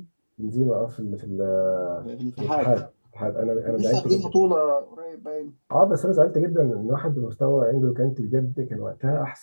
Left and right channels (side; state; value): both; inverted; correlation -1.00